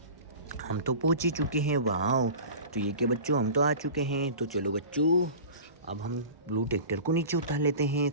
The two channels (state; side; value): inverted; both; correlation -0.36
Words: हम तो पहुंच ही चुके हैं। वाह, तो ये क्या बच्चों, हम तो आ चुके हैं। तो चलो बच्चों, अब हम ब्लू ट्रैक्टर को नीचे उतार लेते हैं।